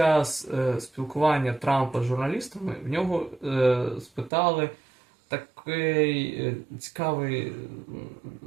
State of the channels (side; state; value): left; drops out; at 4.3 s